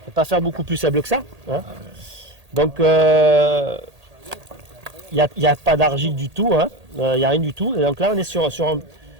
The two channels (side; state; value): left; late; 1.8 ms